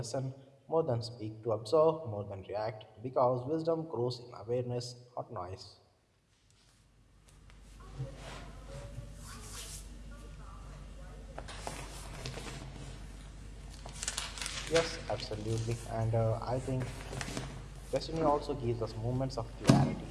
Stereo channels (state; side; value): identical; both; correlation 1.00